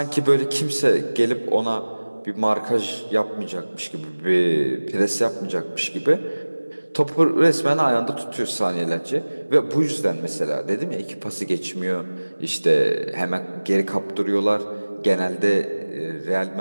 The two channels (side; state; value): both; inverted; correlation -1.00